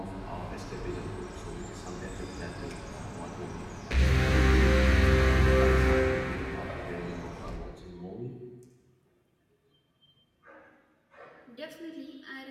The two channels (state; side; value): identical; both; correlation 1.00